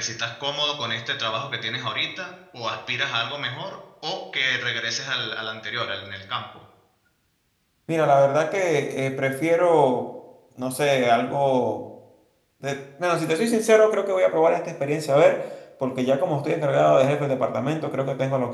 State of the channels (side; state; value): both; identical; correlation 1.00